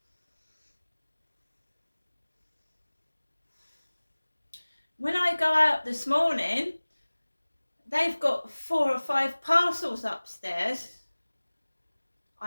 When I go out this morning, they've got 4 or 5 parcels upstairs.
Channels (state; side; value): inverted; both; correlation -1.00